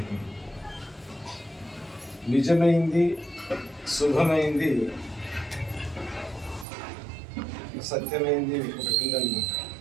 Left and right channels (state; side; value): drops out; left; at 6.7 s